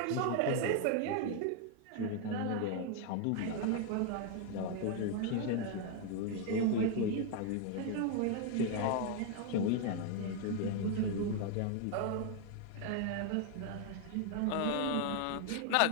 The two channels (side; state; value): both; different; correlation 0.00